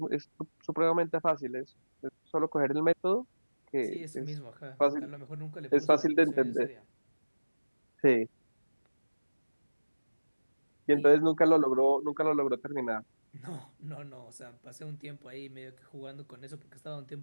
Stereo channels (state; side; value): inverted; both; correlation -1.00